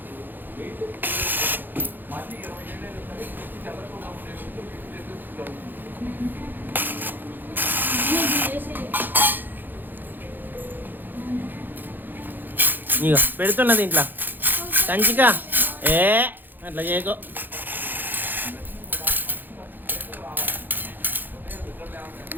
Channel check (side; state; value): left; late; 0.090 ms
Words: ఇక పెడుతున్నది ఇంట్లో కంచిక. అట్లా చేయకో.